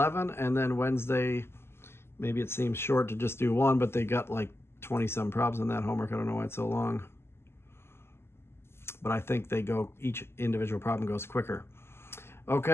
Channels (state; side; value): late; right; 0.12 ms